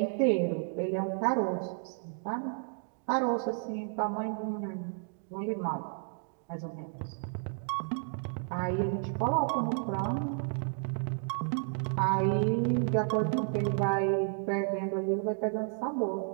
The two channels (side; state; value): left; silent; 56 dB below the other